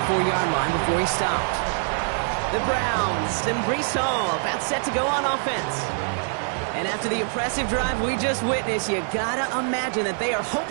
line before he stops. The Browns and Breece Hall about set to go on offense. And after the impressive drive we just witnessed, you gotta imagine that they are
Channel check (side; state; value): left; silent; 62 dB below the other